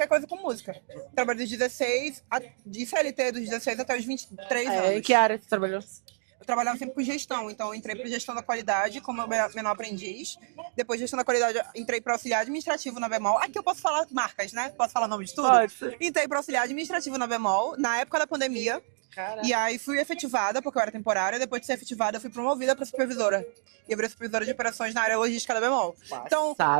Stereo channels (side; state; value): left; silent; digital silence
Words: coisa com música. Trabalhei dos 16, de CLT dos 16 até os 23 anos. Em que área você trabalhou? Eu trabalhava sempre com gestão, então eu entrei para gestão da qualidade como menor aprendiz. Depois de gestão da qualidade, entrei para auxiliar administrativo na Bemol. Aqui eu posso falar marcas, né? Posso falar nome de tudo? Pode. Entrei para auxiliar administrativo na Bemol, na época da pandemia. Caraca. E aí fui efetivada, porque eu era temporária. Depois de ser efetivada, eu fui promovida para supervisora. E eu virei supervisora de operações na área logística da Bemol. Então,